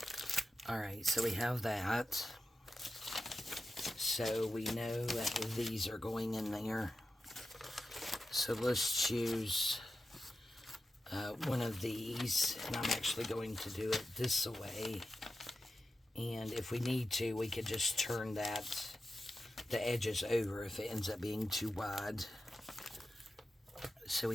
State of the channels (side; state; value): both; normal; correlation 0.91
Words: Alright, so we have that. So we know that these are going in there. So let's choose one of these, and I'm actually going to do it this way. And if we need to, we could just turn that, the edges over if it ends up being too wide. So